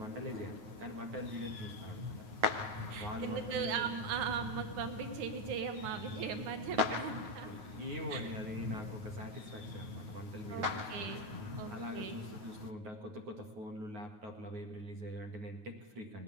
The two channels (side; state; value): left; late; 9.3 ms